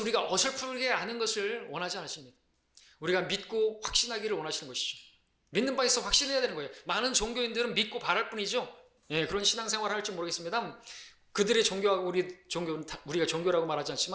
어설프게 아는 것을 원하지 않으십니다. 우리가 믿고 확신하기를 원하시는 것이죠. 믿는 바에 있어 확신해야 되는 거예요. 많은 종교인들은 믿고 바랄 뿐이죠. 그런 신앙생활을 할지 모르겠습니다. 그들의 종교하고 우리가 종교라고 말하지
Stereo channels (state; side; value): identical; both; correlation 1.00